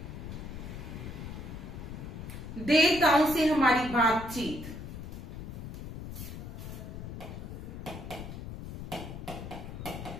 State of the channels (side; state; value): left; noise; rumble, 8 dB below the sound